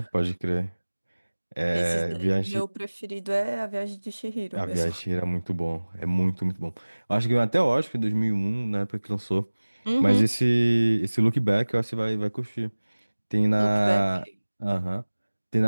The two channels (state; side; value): inverted; both; correlation -1.00